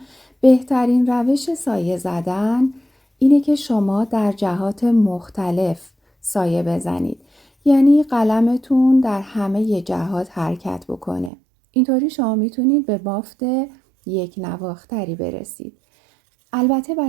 بهترین روش سایه زدن اینه که شما در جهات مختلف سایه بزنید. یعنی قلمتون در همه جهات حرکت بکنه. اینطوری شما میتونید به بافت یک نواختری برسید. البته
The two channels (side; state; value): left; drops out; at 11.3 s